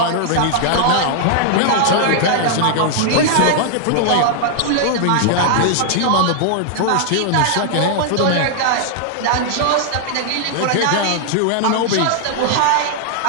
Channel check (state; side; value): different; both; correlation -0.01